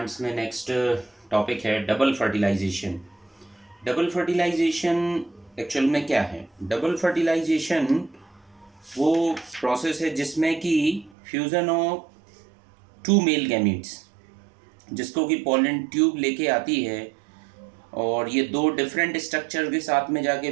में नेक्स्ट टॉपिक है double fertilisation. Double fertilisation actual में क्या है? डबल फर्टिलाइजेशन वो प्रोसेस है जिसमें कि fusion of two male gametes, जिसको कि पॉलन ट्यूब लेके आती है और ये दो डिफरेंट स्ट्रक्चर के साथ में जाके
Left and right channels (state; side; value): drops out; left; at 11.1 s